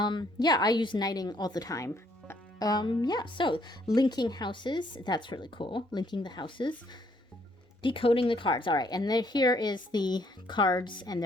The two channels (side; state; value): both; normal; correlation 0.67